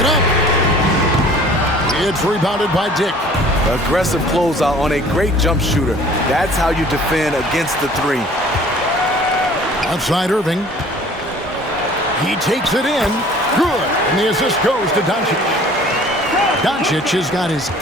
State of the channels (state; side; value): normal; both; correlation 0.50